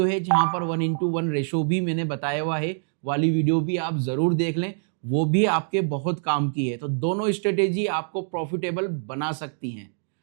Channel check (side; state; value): left; silent; digital silence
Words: है जहां पर 1x1 रेशो भी मैंने बताया हुआ है, वाली वीडियो भी आप जरूर देख लें, वो भी आपके बहुत काम की है। तो दोनों स्ट्रेटेजी आपको प्रॉफिटेबल बना सकती हैं।